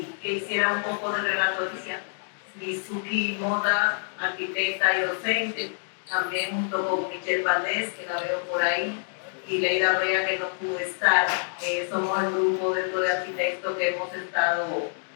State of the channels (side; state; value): right; silent; digital silence